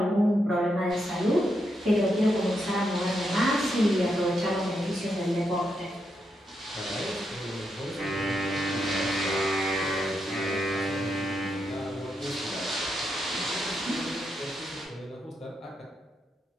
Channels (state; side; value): normal; both; correlation 0.82